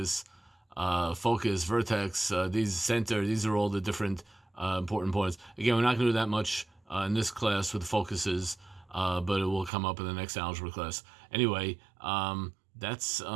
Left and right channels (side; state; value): left; drops out; at 9.7 s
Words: focus, vertex, these are all the different important points. Again, we're not going to do that much in this class with focuses, but it will come up in the next algebra class. Anyway, that's